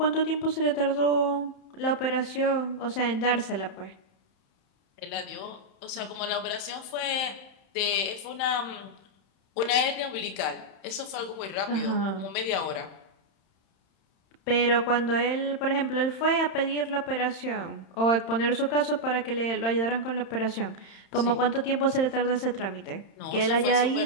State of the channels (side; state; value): right; late; 31 ms